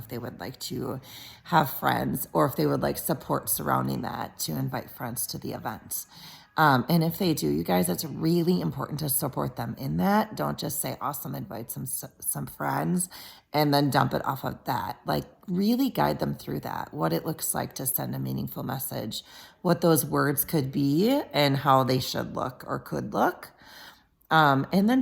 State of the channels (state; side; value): identical; both; correlation 1.00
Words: they would like to have friends or if they would like support surrounding that to invite friends to the event. And if they do, you guys, it's really important to support them in that. Don't just say, awesome, invite some friends and then dump it off of that. Like really guide them through that, what it looks like to send a meaningful message, what those words could be and how they should look or could look. And then